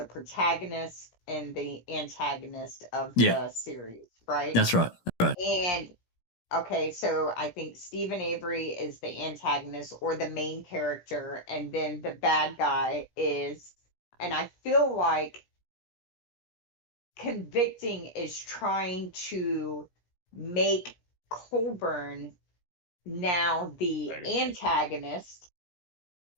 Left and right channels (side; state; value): right; late; 17 ms